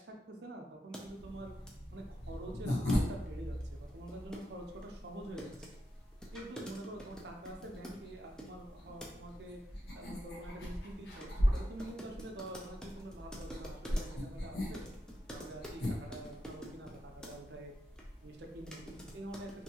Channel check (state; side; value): normal; both; correlation 0.86